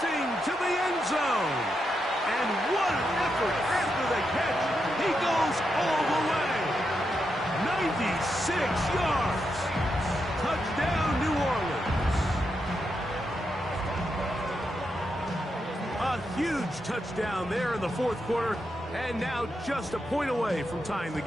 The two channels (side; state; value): both; normal; correlation 0.84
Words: to the end zone. And what an effort after the catch. He goes all the way. 96 yards. Touchdown, New Orleans. A huge touchdown there in the fourth quarter. And now just a point away from tying the